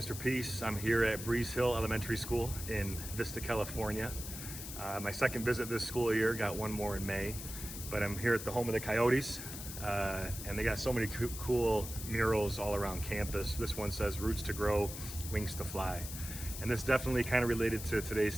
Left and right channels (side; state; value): left; noise; hiss, 9 dB below the sound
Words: Peace. I'm here at Breeze Hill Elementary School in Vista, California. My second visit this school year, got one more in May, but I'm here at the home of the Coyotes, and they got so many cool murals all around campus. This one says, "Roots to grow, wings to fly." And this definitely kind of related to today's